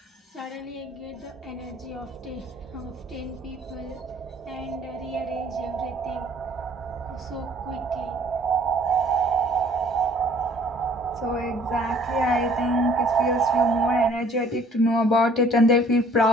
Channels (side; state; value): both; normal; correlation 0.56